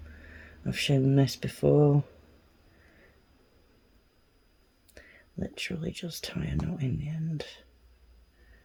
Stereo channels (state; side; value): identical; both; correlation 1.00